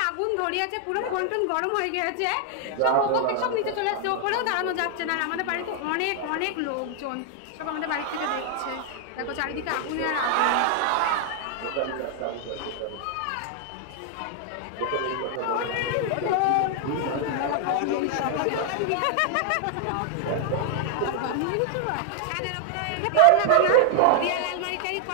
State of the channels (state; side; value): different; both; correlation 0.00